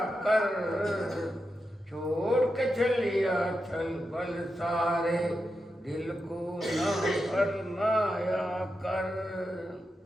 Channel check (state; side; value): normal; both; correlation 0.88